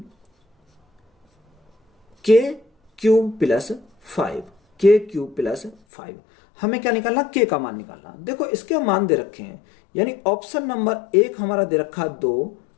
k cube plus 5 हमें क्या निकालना k का मान निकालना। देखो इसके मान दे रखे हैं, यानी ऑप्शन नंबर 1 हमारा दे रखा 2,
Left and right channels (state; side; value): drops out; right; at 5.8 s